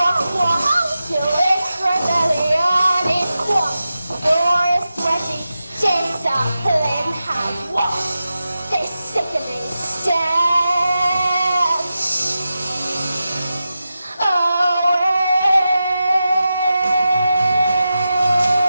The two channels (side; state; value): both; inverted; correlation -0.91